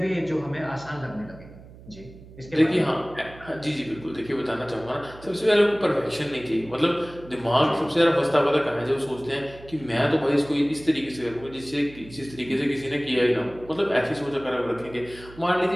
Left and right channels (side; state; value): right; noise; hum, 19 dB below the sound